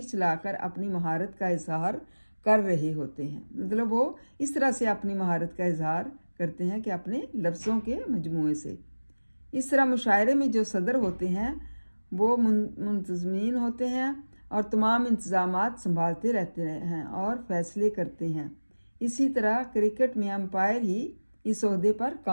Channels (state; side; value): inverted; both; correlation -1.00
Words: चलाकर अपनी महारत का इजहार कर रहे होते हैं। मतलब वो इस तरह से अपनी महारत का इजहार करते हैं कि अपने लफ्ज़ों के मजमूए से। इस तरह मुशायरे में जो सदर होते हैं वो मुंतज़मीन होते हैं और तमाम इंतज़ामात संभालते रहते हैं और फैसले करते हैं। इसी तरह क्रिकेट में अंपायर ही इस ओहदे पर